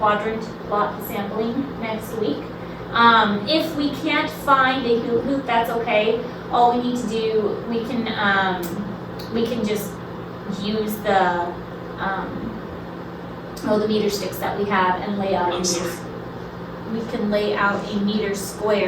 plot sampling next week. If we can't find a hoop, that's okay. All we need to do, we can just use the meter sticks that we have and lay out a meter. We can lay out a meter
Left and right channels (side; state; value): both; identical; correlation 1.00